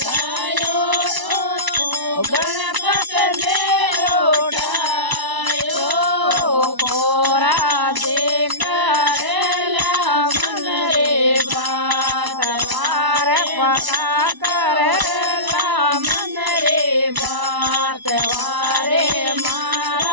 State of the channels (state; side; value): late; left; 1.0 ms